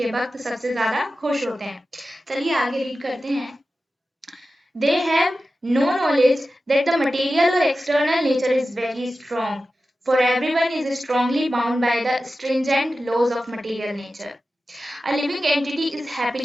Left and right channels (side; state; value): both; normal; correlation 0.94